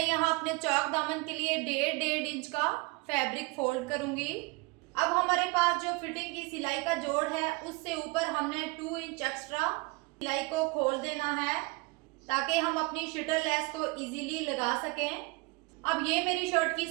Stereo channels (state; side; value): quieter; left; 26.3 dB